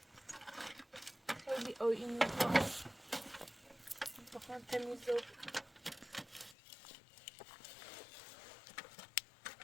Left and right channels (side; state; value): right; drops out; at 6.6 s